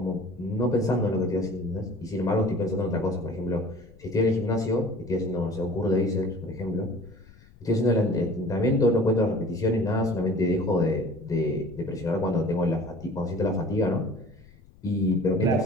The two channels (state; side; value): noise; left; rumble, 24 dB below the sound